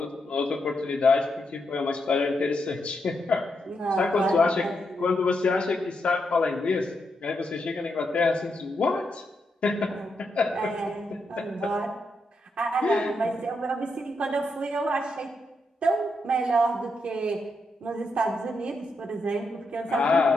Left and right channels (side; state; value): both; normal; correlation 0.82